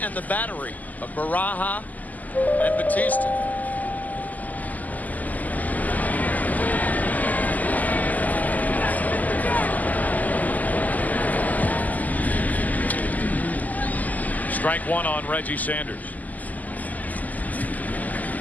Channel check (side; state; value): right; late; 0.080 ms